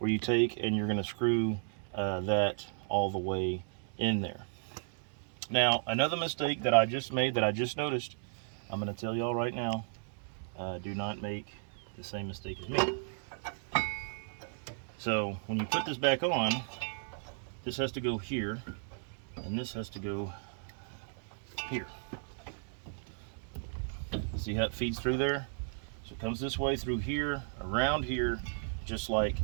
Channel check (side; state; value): left; silent; digital silence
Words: you take and you're going to screw that all the way in there. Now, another mistake that I just made, that I just noticed, I'm going to tell y'all right now, do not make the same mistake as me. So when you put this back on, this has to go here, and this has to go here. See how it feeds through there? So it comes this way through here, around here, just like